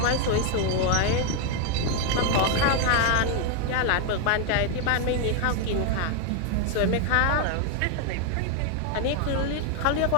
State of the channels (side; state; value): both; different; correlation 0.01